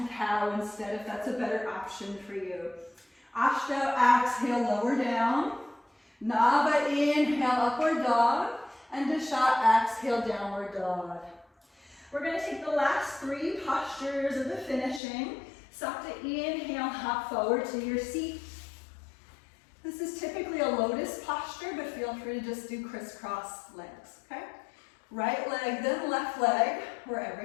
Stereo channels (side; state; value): right; drops out; at 15.0 s